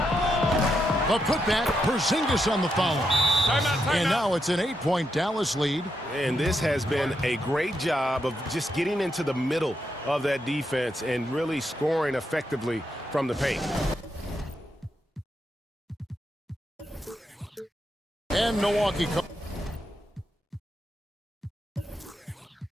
A putback, Porzingis on the follow. And now it's an 8-point Dallas lead. And this has been a great job of just getting into the middle of that defense and really scoring effectively from the paint. And Milwaukee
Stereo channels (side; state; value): both; normal; correlation 0.82